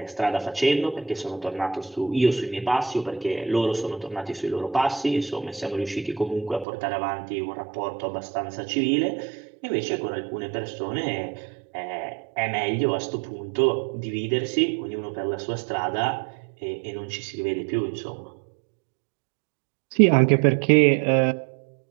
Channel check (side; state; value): left; drops out; at 6.7 s